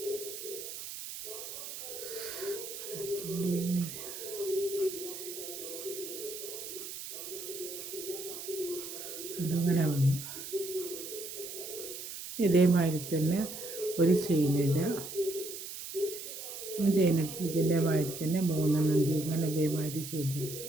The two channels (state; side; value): noise; right; hiss, 9 dB below the sound